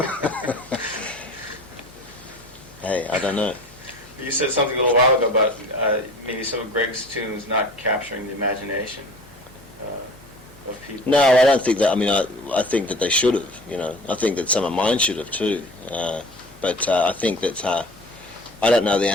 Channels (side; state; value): both; normal; correlation 0.42